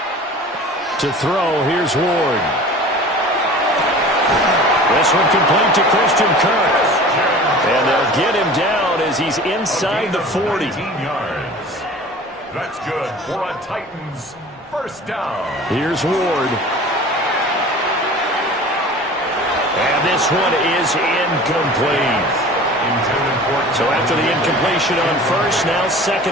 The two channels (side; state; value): both; normal; correlation 0.41